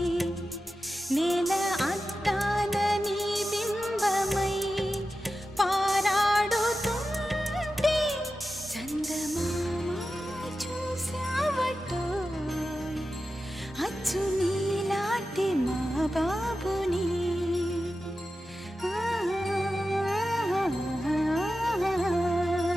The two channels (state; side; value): normal; both; correlation 0.92